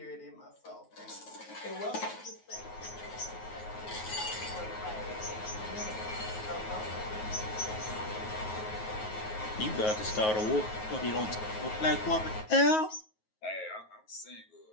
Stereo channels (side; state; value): right; late; 9.4 ms